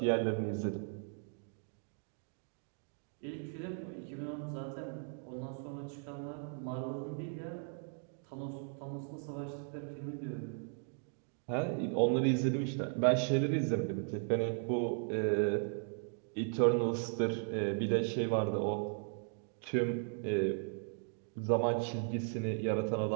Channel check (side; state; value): left; silent; 53 dB below the other